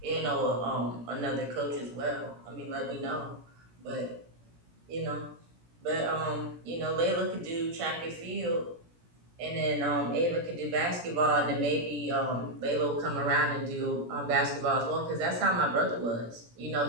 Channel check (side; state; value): left; late; 17 ms